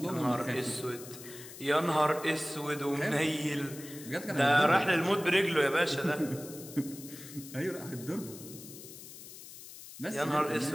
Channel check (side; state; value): left; noise; hiss, 15 dB below the sound